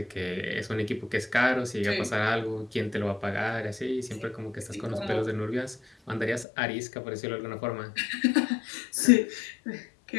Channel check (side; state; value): right; drops out; at 6.5 s